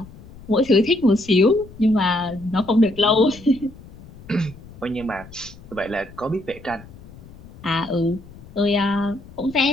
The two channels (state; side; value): noise; left; rumble, 19 dB below the sound